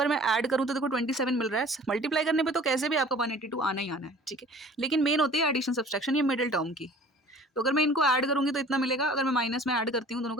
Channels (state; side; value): normal; both; correlation 0.48